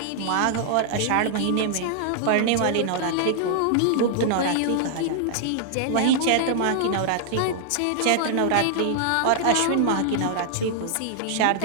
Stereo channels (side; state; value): both; different; correlation -0.01